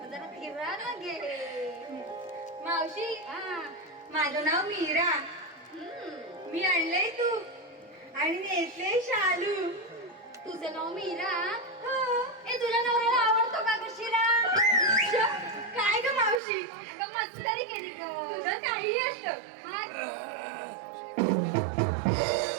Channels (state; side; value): drops out; left; at 16.4 s